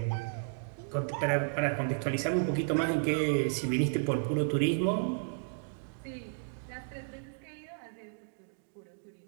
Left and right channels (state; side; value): silent; left; digital silence